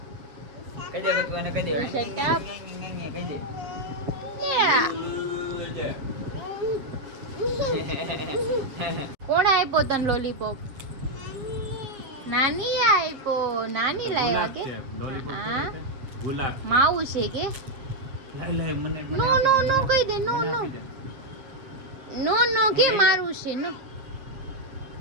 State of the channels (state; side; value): late; left; 7.3 ms